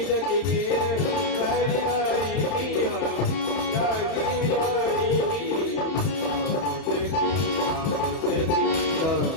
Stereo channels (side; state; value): right; late; 31 ms